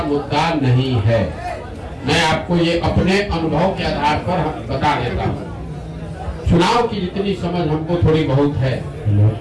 मुद्दा नहीं है। मैं आपको ये अपने अनुभव के आधार पर बता देता हूँ। चुनाव की जितनी समझ हमको थोड़ी बहुत है,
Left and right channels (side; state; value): both; identical; correlation 1.00